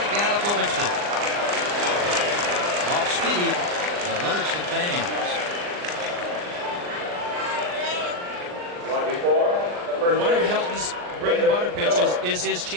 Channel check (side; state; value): left; late; 39 ms